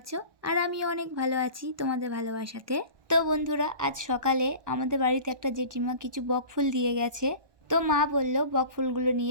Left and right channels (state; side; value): late; left; 1.2 ms